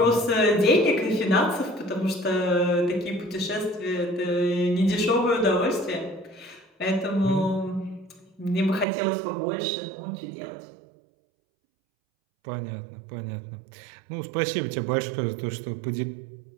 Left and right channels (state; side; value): drops out; left; at 8.8 s